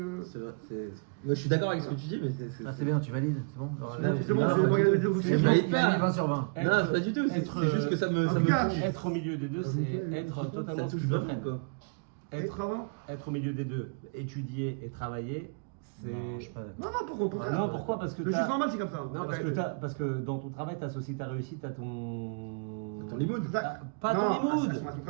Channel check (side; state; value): left; quieter; 35.8 dB